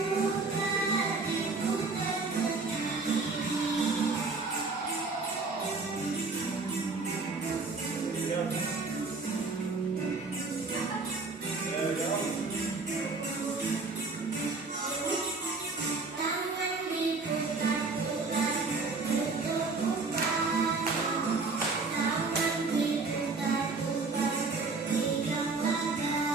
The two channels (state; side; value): quieter; left; 4.0 dB